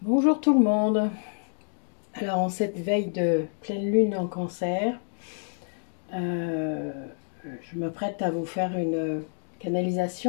Bonjour tout le monde. Alors en cette veille de pleine lune en cancer, euh, je m'apprête à vous faire une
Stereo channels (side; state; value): right; silent; digital silence